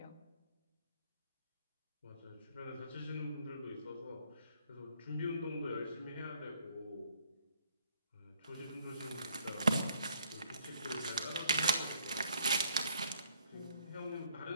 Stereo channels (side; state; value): both; inverted; correlation -0.65